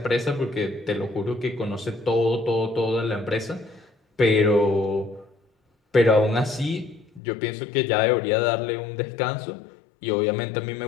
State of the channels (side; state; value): right; drops out; at 7.2 s